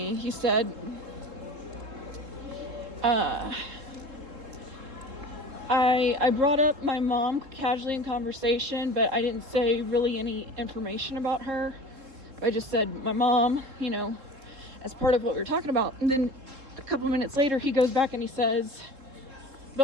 I brought up my mom casually in conversation, but I didn't say really any information about her. I just said my mom, as part of what we were talking about. And then a couple minutes later, he goes back and he says,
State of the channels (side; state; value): left; late; 3.7 ms